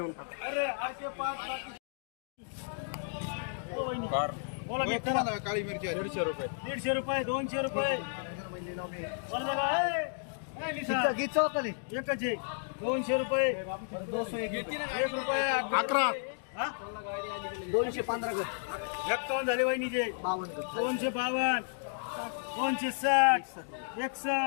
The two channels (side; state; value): right; silent; digital silence